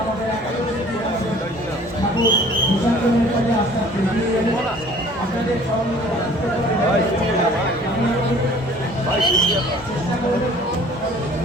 ঠাকুর বিসর্জনের কাজে আস্তে আস্তে এগিয়ে যাবে। আপনাদের চেষ্টা করবেন।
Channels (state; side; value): normal; both; correlation 0.52